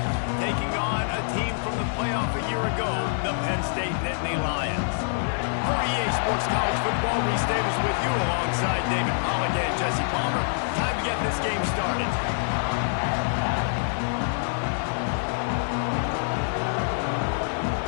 taking on a team from the playoff a year ago, the Penn State Nittany Lions. For EA Sports College Football, Reese Davis with you alongside David Pollack and Jesse Palmer. Time to get this game started.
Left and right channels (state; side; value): silent; right; digital silence